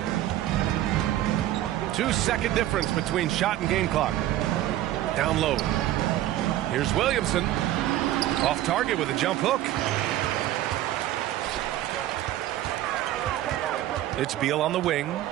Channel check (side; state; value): left; quieter; 13.7 dB